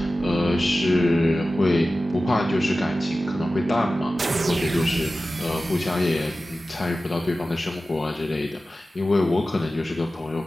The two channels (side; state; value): both; normal; correlation 0.95